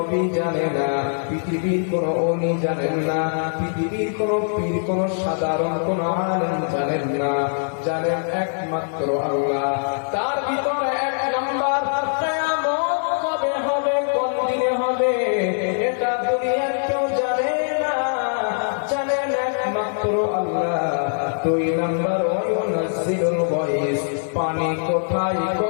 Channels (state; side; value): silent; right; 64 dB below the other